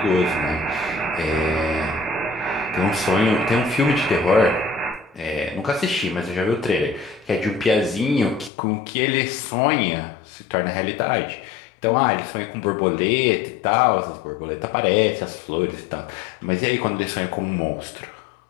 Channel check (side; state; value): right; drops out; at 8.5 s